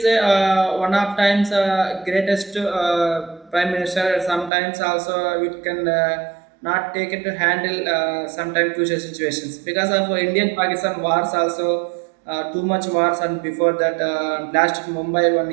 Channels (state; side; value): drops out; left; at 4.5 s